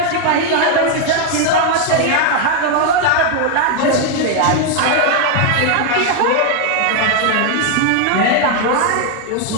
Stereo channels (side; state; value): both; different; correlation 0.00